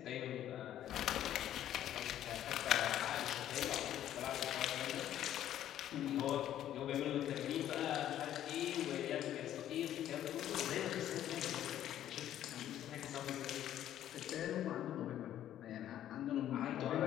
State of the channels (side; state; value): right; quieter; 11.6 dB